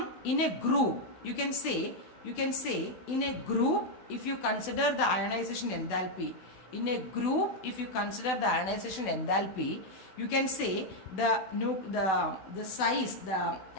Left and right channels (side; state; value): right; late; 16 ms